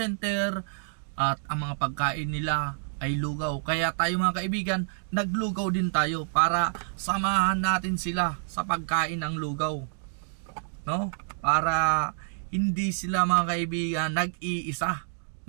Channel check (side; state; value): left; silent; digital silence